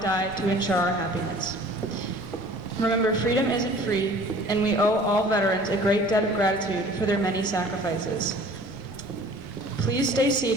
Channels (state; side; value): normal; both; correlation 0.48